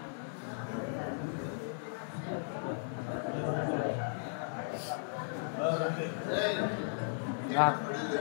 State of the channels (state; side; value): silent; right; digital silence